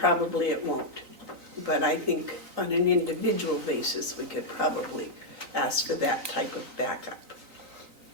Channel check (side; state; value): left; late; 3.9 ms